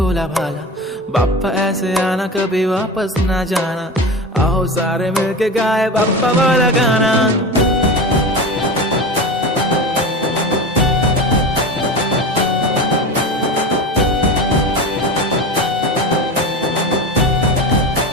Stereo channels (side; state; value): both; normal; correlation 0.27